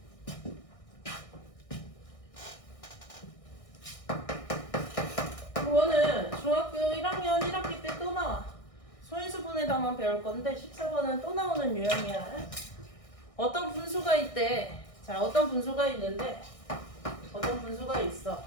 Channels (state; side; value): late; right; 1.6 ms